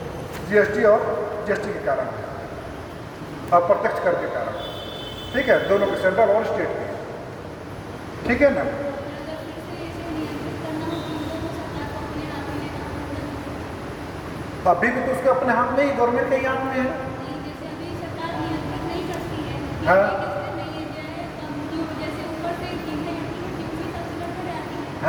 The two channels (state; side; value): identical; both; correlation 1.00